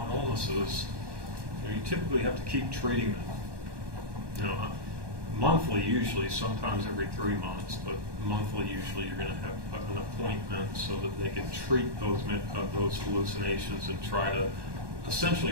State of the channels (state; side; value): late; left; 1.2 ms